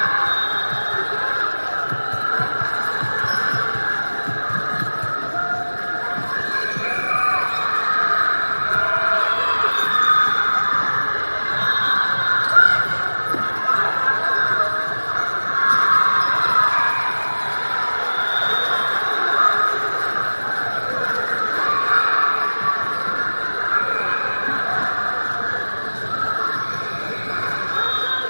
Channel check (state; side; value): inverted; both; correlation -1.00